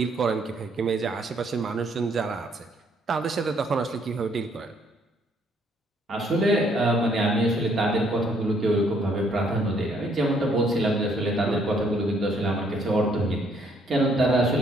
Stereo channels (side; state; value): both; normal; correlation 0.67